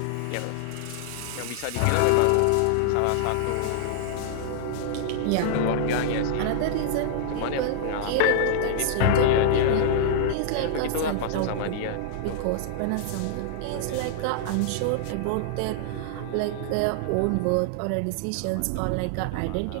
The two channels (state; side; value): different; both; correlation -0.01